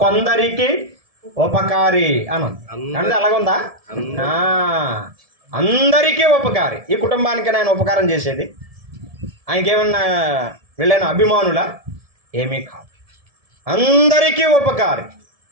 కొందరికి ఉపకారి అని అంటే అలాగుందా? అందరికీ ఉపకారి. ఈ కుటుంబానికి ఆయన ఉపకారం చేసేది, ఆయనకేమన్నా వీళ్ళైన అభిమానులా? ఏమీ కాదు, అందరికీ ఉపకారి.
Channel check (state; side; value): late; left; 1.7 ms